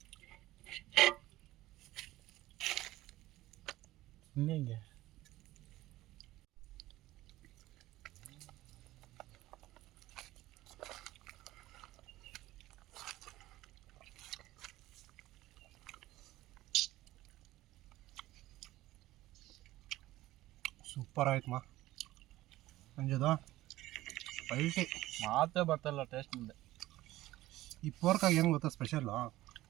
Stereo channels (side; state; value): left; quieter; 16.5 dB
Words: ಹಿಂಗೆ ಸೂಪರ್ ಆಯ್ತು ಸಂಜೆದು ಪಲ್ಟಿ ಮಾತೇ ಬರ್ತಲ್ಲ ಟೇಸ್ಟ್ ಮುಂದೆ. ಈ ಪೋರ್ಕಾಗಿ ಏನು ಗೊತ್ತಾ ಸ್ಪೆಷಲ್ಲು